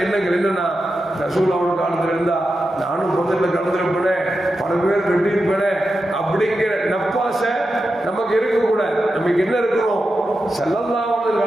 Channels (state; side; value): normal; both; correlation 0.89